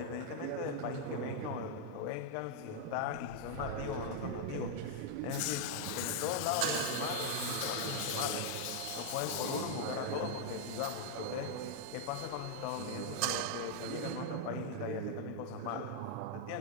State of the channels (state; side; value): different; both; correlation 0.00